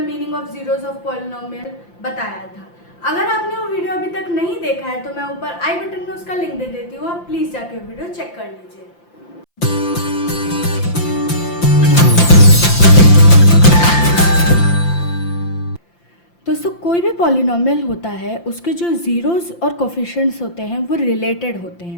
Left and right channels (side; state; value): right; late; 5.8 ms